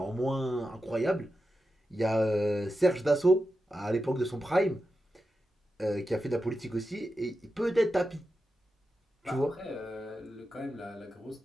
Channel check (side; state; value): both; normal; correlation 0.90